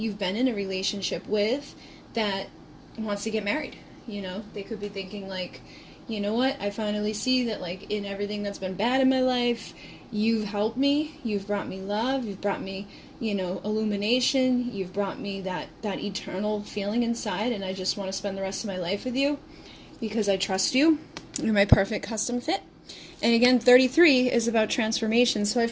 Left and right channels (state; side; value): identical; both; correlation 1.00